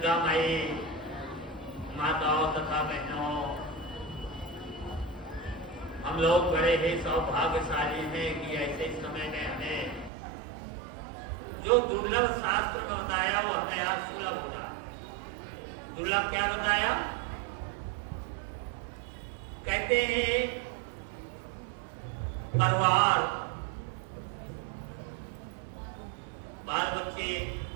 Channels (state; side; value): drops out; left; at 10.1 s